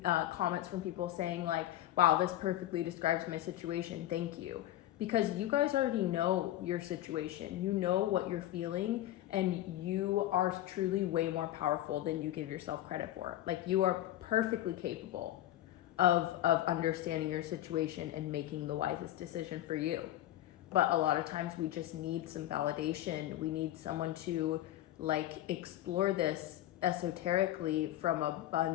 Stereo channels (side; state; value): right; quieter; 13.8 dB